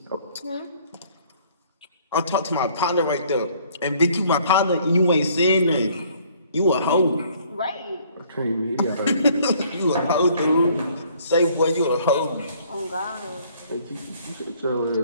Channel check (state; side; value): inverted; both; correlation -0.60